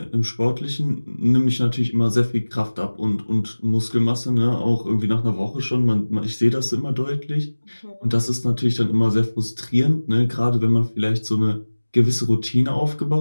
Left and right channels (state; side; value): inverted; both; correlation -1.00